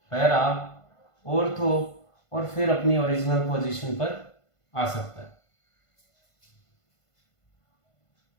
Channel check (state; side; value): late; right; 1.5 ms